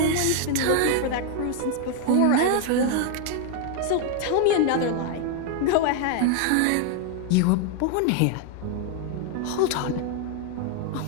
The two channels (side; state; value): both; different; correlation 0.00